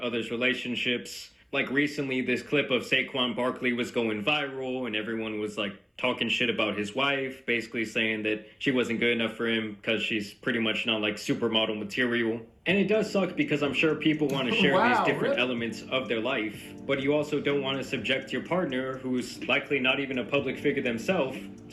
relationships. Like recently, this clip of Saquon Barkley was going viral, and everyone was like talking shit about his wife, basically saying that she wasn't good enough for him because she's pretty much not like supermodel material. And it does suck because I'm sure people want to share these different elements of their life, but you also don't want to subject your partner, who's likely not even a public figure themselves,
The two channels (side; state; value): both; identical; correlation 1.00